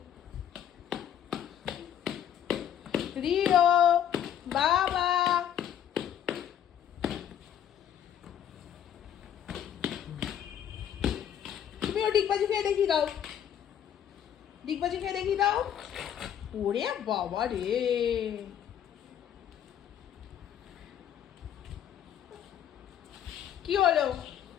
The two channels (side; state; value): right; quieter; 9.8 dB